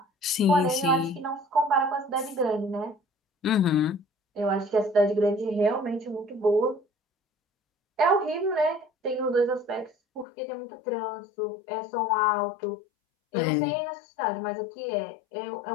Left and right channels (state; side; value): drops out; right; at 10.2 s